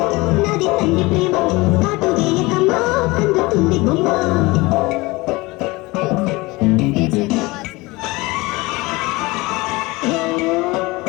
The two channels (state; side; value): quieter; right; 22.7 dB